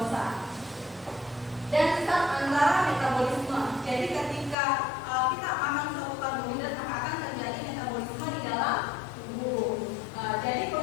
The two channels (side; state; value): right; drops out; at 4.5 s